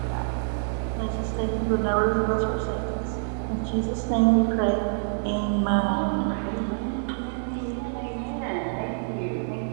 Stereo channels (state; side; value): silent; left; digital silence